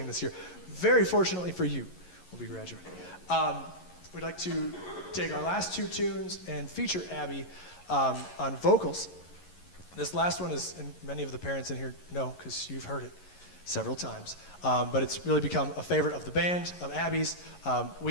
this year. Very fortunately for you, will be graduating. We'd like to take our last two tunes and feature Abby on vocals. This last one is, and many of the parents in here know because you've heard it several times, but it's really become a favorite of the band, of Abby's.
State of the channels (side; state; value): right; late; 11 ms